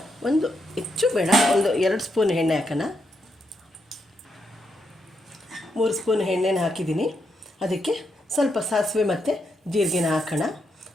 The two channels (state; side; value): normal; both; correlation 0.80